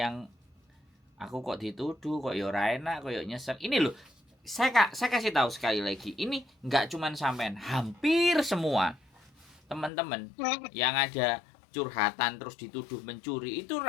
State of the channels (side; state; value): right; drops out; at 9.9 s